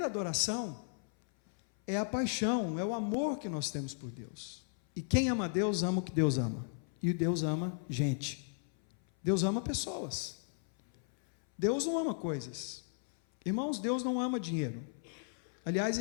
adoração é a paixão, é o amor que nós temos por Deus. E quem ama Deus, ama o que Deus ama. E Deus ama gente. Deus ama pessoas. Deus não ama coisas. Irmãos, Deus não ama dinheiro. Aliás,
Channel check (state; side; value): silent; right; 54 dB below the other